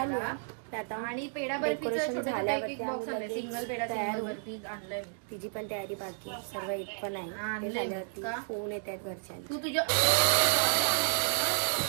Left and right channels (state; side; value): silent; left; digital silence